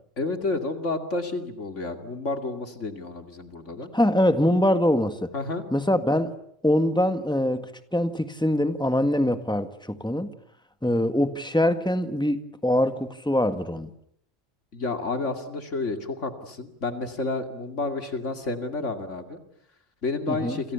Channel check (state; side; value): normal; both; correlation 0.71